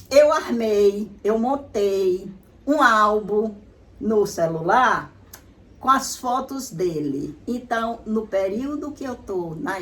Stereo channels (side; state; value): both; identical; correlation 1.00